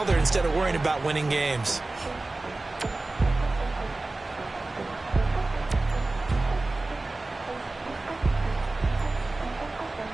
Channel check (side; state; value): left; quieter; 3.1 dB